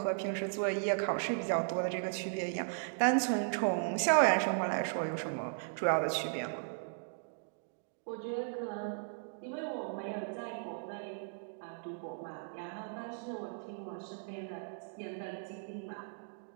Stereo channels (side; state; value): left; silent; digital silence